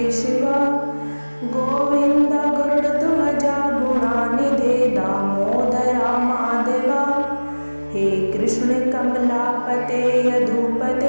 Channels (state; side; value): inverted; both; correlation -1.00